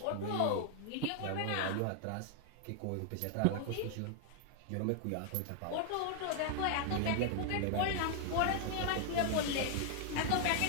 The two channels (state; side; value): different; both; correlation 0.00